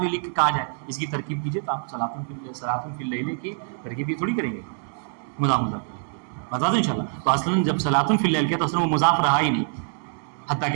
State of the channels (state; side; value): silent; left; 62 dB below the other